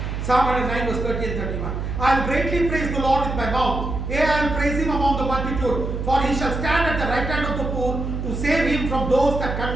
Psalm 109 verse 30 and 31. I will greatly praise the Lord with my mouth. Yea, I will praise him among the multitude, for he shall stand at the right hand of the poor to save him from those that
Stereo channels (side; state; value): right; noise; hum, 4 dB below the sound